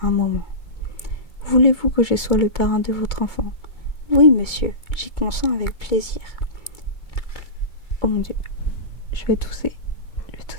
un moment. Voulez-vous que je sois le parrain de votre enfant ? » ?»« Oui, monsieur, j'y consens avec plaisir. » Oh mon Dieu, je vais tousser. Ça va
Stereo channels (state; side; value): late; right; 2.2 ms